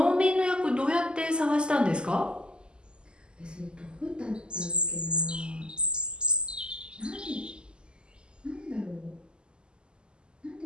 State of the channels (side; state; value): left; late; 0.048 ms